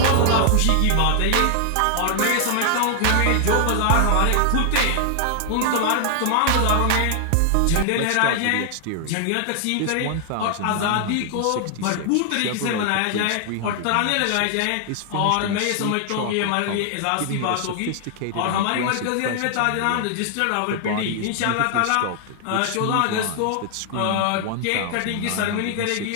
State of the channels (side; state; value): both; different; correlation 0.00